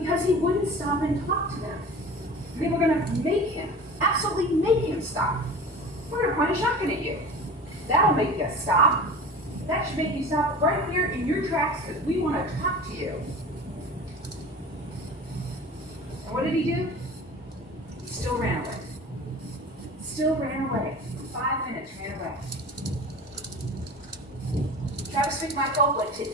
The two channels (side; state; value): both; normal; correlation 0.36